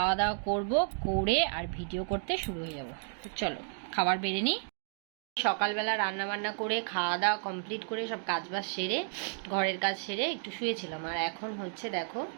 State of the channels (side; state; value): left; silent; 56 dB below the other